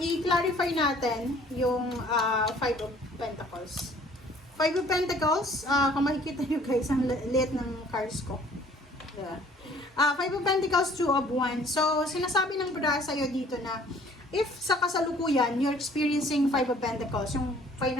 natin yung 5 of Pentacles. 5 of Pentacles, kung makikita nyo guys, ang liit ng cards ko. Yeah. 5 of Pentacles, 2 of Wands. So, sinasabi ng baraha sa'yo dito na if sa kasalukuyan, you're experiencing 5 of Pentacles, yung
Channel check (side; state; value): both; normal; correlation 0.55